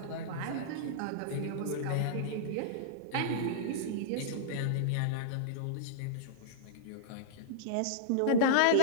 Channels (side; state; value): both; different; correlation -0.02